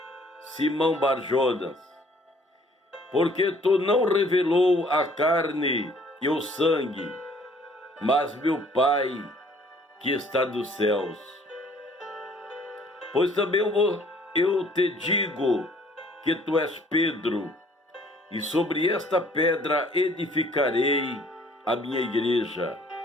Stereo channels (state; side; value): normal; both; correlation 0.58